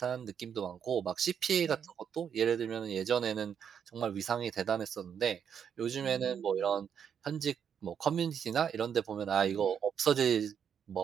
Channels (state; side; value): quieter; left; 7.9 dB